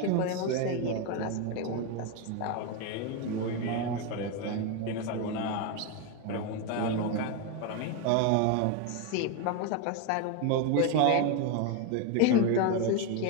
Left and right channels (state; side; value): different; both; correlation 0.02